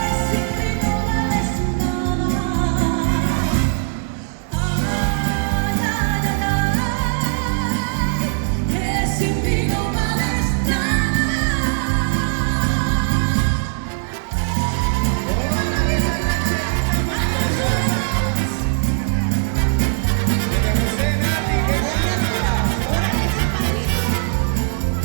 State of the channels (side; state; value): left; silent; digital silence